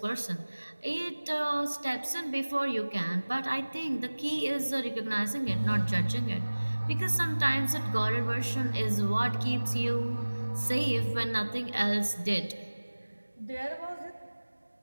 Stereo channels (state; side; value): inverted; both; correlation -1.00